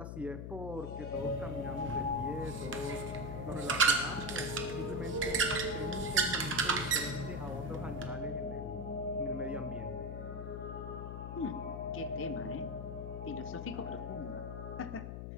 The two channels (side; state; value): left; noise; hum, 6 dB below the sound